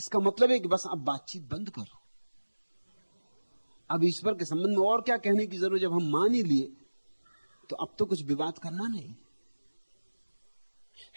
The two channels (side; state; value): both; inverted; correlation -1.00